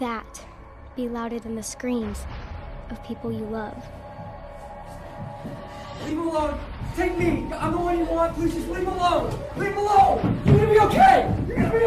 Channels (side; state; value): both; identical; correlation 1.00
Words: be louder than the screams of people you love? Leave him alone! Take me! I'm the one you want! Please just leave him alone! Leave him alone! You're gonna be okay! You're gonna be